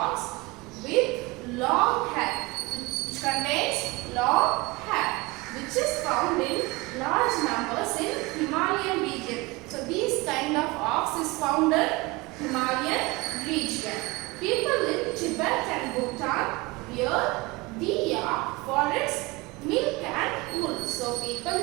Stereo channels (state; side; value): quieter; left; 23.4 dB